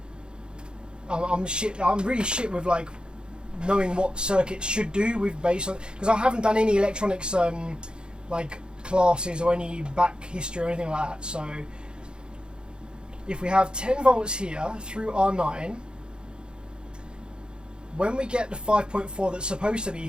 I'm really shit with like knowing what circuits should do with base on, because I haven't done any electronics like classes or any back history or anything like that. So if we have 10 volts here through R9, when we get the 5.4 that's supposed to be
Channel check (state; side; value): late; left; 0.050 ms